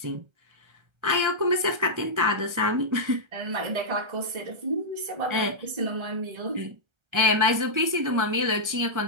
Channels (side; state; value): left; late; 1.3 ms